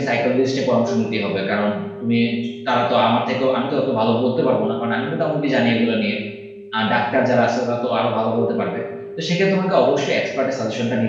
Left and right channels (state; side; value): identical; both; correlation 1.00